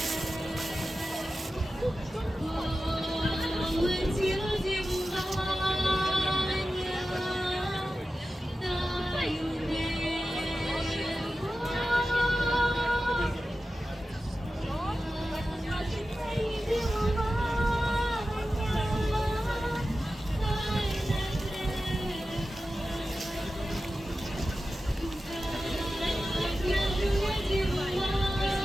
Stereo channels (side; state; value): both; normal; correlation 0.93